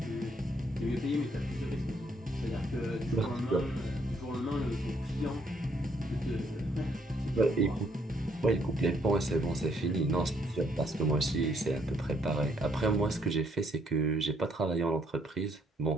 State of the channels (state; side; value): normal; both; correlation 0.69